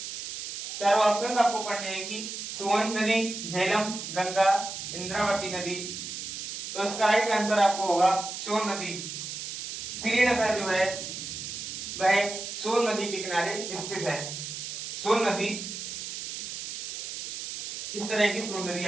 चारों ऑप्शंस आपको पढ़ने हैं कि सोन नदी, झेलम, गंगा, इंद्रावती नदी। तो इसका राइट आंसर आपको होगा सोन नदी। श्रीनगर जो है वह सोन नदी के किनारे स्थित है। सोन नदी, इस तरह की सोन नदी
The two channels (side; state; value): right; noise; hiss, 7 dB below the sound